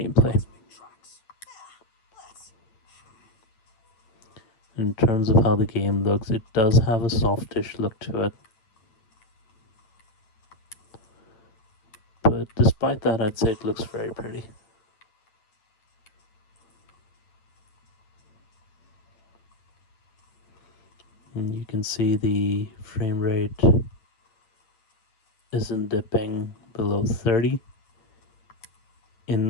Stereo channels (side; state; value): right; late; 8.9 ms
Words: In terms of how the game looks, it does have a softish look to it. But despite that, I'd say it looks very pretty. And you can see the frame rate isn't dipping below 30.